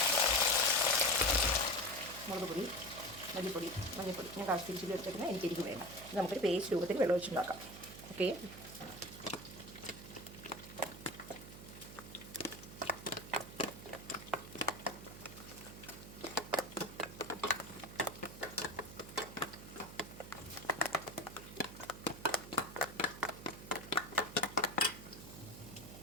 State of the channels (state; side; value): noise; right; hum, 14 dB below the sound